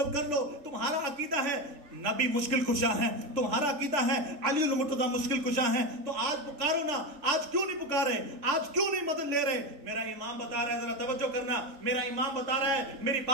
کر لو. تمہارا عقیدہ ہے نبی مشکل کشا ہے, تمہارا عقیدہ ہے علی المرتضیٰ مشکل کشا ہے, تو آج پکارو نا. آج کیوں نہیں پکارے, آج کیوں نہیں مدد لے رہے؟ میرا امام بتا رہا ہے, ذرا توجہ کرنا, میرا امام بتا رہا ہے, میری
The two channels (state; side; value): late; left; 3.5 ms